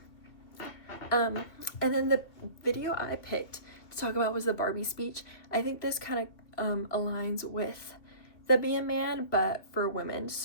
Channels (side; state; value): right; late; 2.6 ms